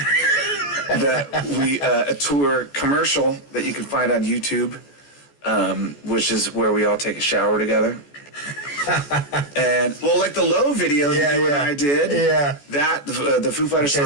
a tour commercial that you can find on YouTube, which is where we all take a shower together. And like the Low video that you and I did, that the Foo Fighters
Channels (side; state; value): right; late; 14 ms